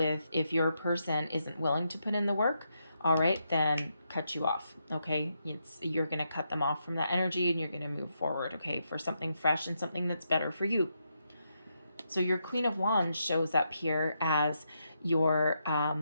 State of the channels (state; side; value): inverted; both; correlation -0.82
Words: if your person isn't willing to put in the work, all right, then cut you off, okay? You're going to cut them off from that energy and you're going to move forward, okay, for something fresh and something that's better for you. So your Queen of Wands shows up here as your